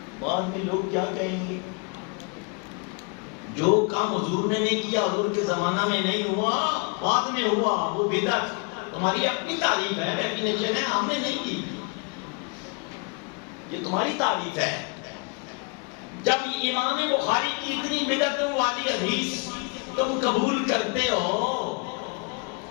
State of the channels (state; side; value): quieter; right; 33.0 dB